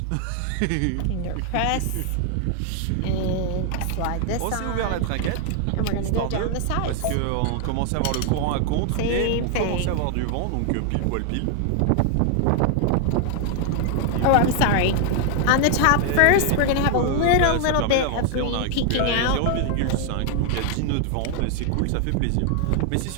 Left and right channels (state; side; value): different; both; correlation 0.00